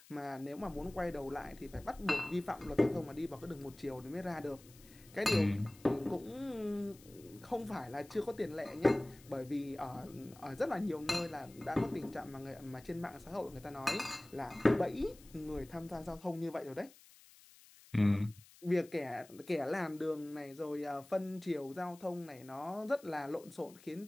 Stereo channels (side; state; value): left; noise; hiss, 23 dB below the sound